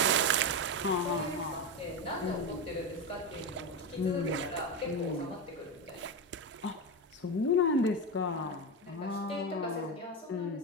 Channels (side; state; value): both; normal; correlation 0.15